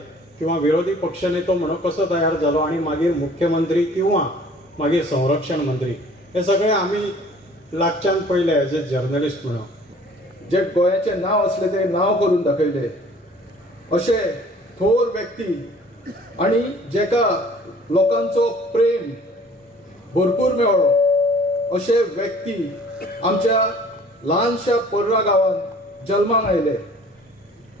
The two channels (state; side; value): normal; both; correlation 0.51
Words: किंवा विरोधी पक्षनेतो म्हणून कसो तयार जालो आणि मागीर मुख्यमंत्री किंवा मागीर संरक्षण मंत्री, हे सगळे आमी लागच्यान पयले एज ए जर्नलिस्ट म्हणून. जे गोंयाचे नांव असले ते नांव करून दाखयले अशे थोर व्यक्ती आणि जेका लोकांचो प्रेम भरपूर मेळ्ळो अशे व्यक्ती आमच्या ल्हानशा पर्रा गांवांत जल्माक आयले.